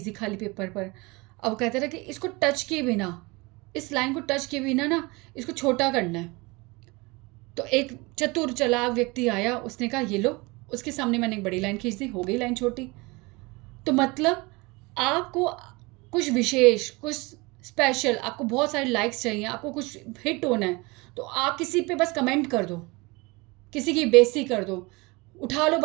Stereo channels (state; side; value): quieter; left; 25.1 dB